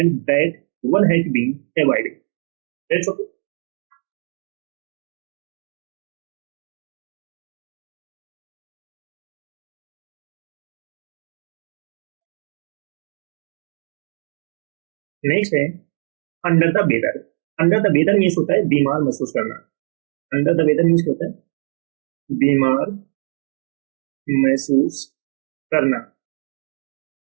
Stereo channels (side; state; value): left; silent; digital silence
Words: that one has been avoided. That's okay. Next है under the weather. Under the weather means होता है बीमार महसूस करना। अंडर द वेदर मीन्स क्या होता है, बीमार महसूस करना।